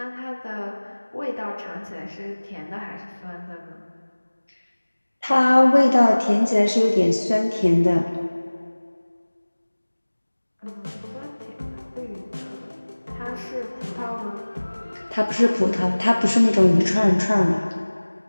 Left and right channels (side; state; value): both; inverted; correlation -1.00